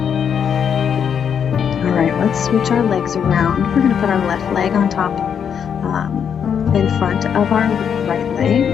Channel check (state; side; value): quieter; right; 7.7 dB